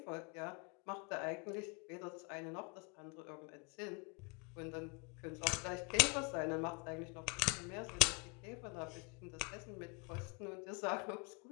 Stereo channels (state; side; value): quieter; right; 28.6 dB